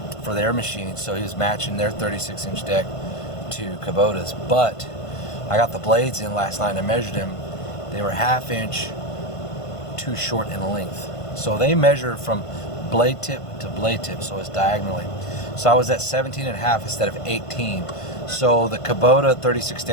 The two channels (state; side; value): late; right; 1.5 ms